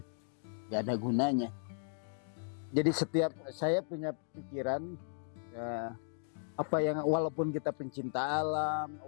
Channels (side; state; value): right; silent; digital silence